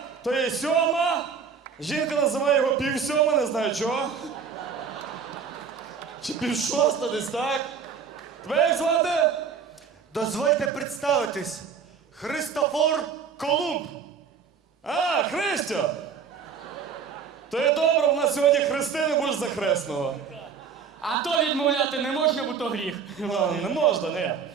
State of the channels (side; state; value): left; quieter; 6.4 dB